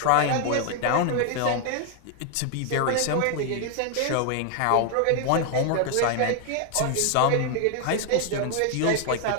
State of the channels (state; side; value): different; both; correlation 0.00